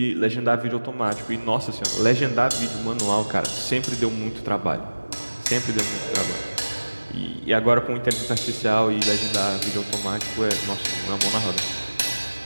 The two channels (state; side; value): inverted; both; correlation -1.00